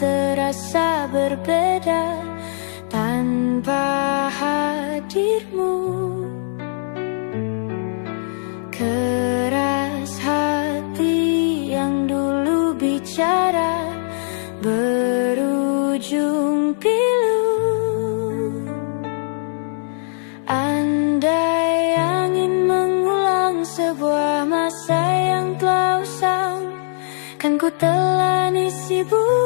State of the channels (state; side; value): silent; right; 61 dB below the other